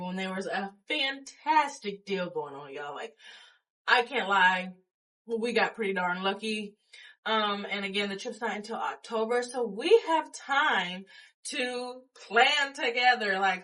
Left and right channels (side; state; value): both; identical; correlation 1.00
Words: there was a fantastic deal going on, y'all. Like, I can't lie. We got pretty darn lucky. And again, the trip's not until October, so we have time to plan together.